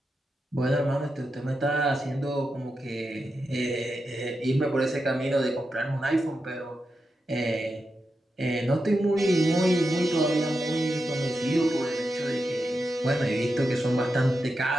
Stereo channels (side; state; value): both; normal; correlation 0.88